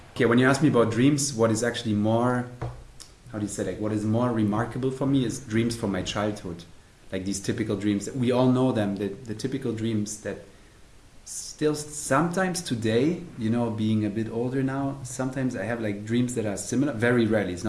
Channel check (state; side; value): identical; both; correlation 1.00